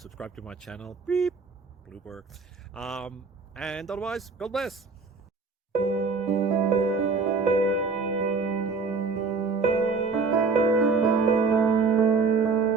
to my channel. Beep. Blooper. And otherwise, God bless.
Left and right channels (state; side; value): quieter; left; 4.6 dB